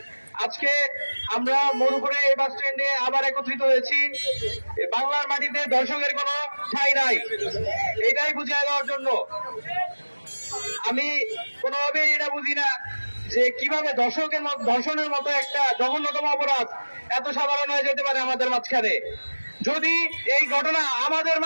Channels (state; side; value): inverted; both; correlation -1.00